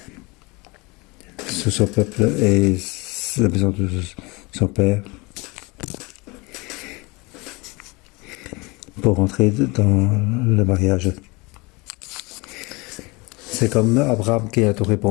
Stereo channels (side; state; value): right; quieter; 25.8 dB